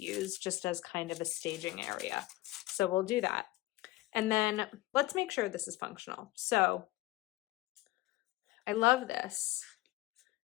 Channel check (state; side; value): quieter; right; 18.0 dB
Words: use just as kind of a staging area. So we'll do that. And then let's make sure this is functional. So I love this.